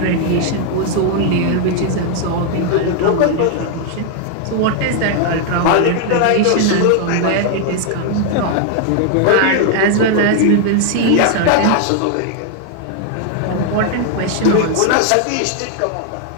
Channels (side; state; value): both; different; correlation 0.00